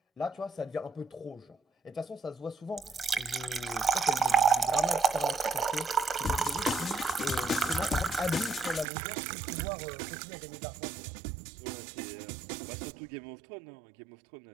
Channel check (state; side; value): drops out; left; at 8.8 s